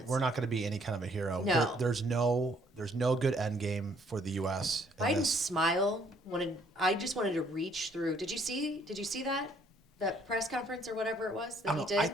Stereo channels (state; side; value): normal; both; correlation 0.64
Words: we're not going to be any kind of a hero. No. There's no good end game for the U.S. in Biden's this. smile I just wanted to reach through. Did you see that press conference or whatever it was that I he don't did? know. I